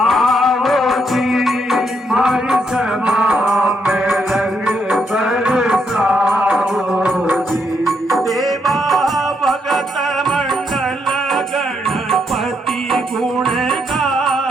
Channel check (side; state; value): both; normal; correlation 0.77